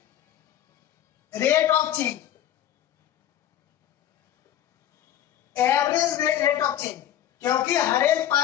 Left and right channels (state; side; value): quieter; right; 11.4 dB